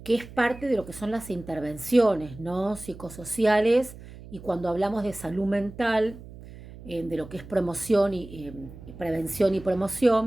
es parte de lo que son las intervenciones, ¿no? Psicosociales, y cuando hablamos de salud mental, de lo que es promoción y prevención y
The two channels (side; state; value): right; noise; hum, 16 dB below the sound